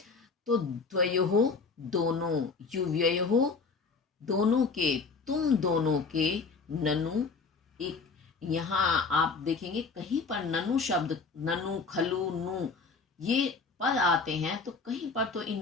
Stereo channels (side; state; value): right; quieter; 4.6 dB